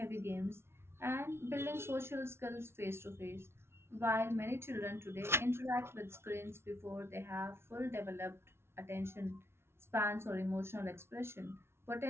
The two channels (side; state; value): left; late; 0.12 ms